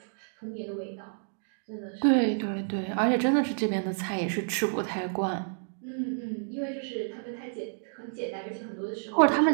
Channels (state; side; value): silent; left; digital silence